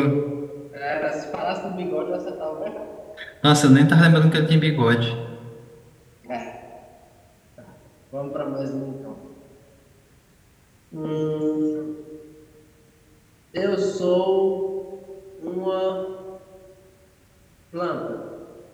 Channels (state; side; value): identical; both; correlation 1.00